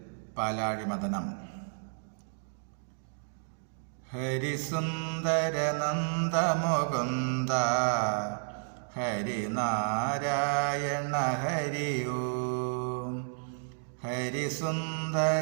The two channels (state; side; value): silent; left; digital silence